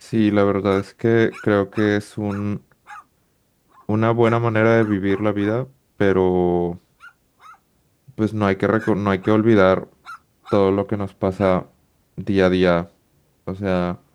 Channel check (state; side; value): identical; both; correlation 1.00